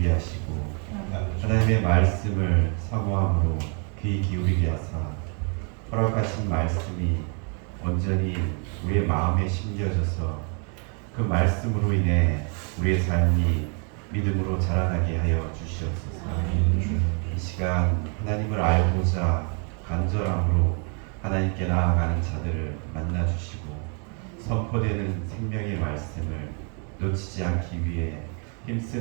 하시고 하나님의 말씀을 사모함으로 귀 기울이게 하사 허락하신 말씀이 온전히 우리의 마음에 심겨져서 그 말씀으로 인해 우리의 삶이 믿음으로 자라나게 하여 주시옵소서. 이 시간 하나님을 알고자 간절함으로 하나님께 나아가는 자들을 만나 주시고 선포되는 생명의 말씀을 놓치지 않기 위해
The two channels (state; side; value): quieter; left; 39.4 dB